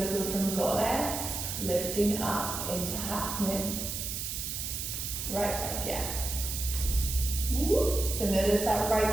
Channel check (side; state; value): right; noise; hiss, 4 dB below the sound